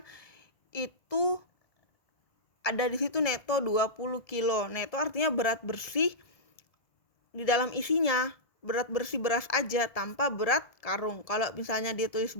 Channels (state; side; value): late; right; 1.7 ms